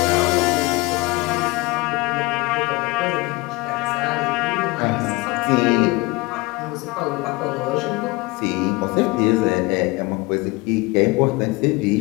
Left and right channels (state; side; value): quieter; right; 23.2 dB